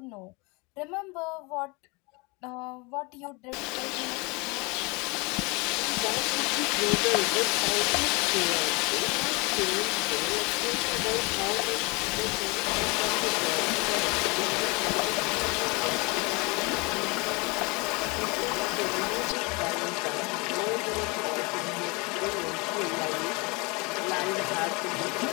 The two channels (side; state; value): right; quieter; 28.1 dB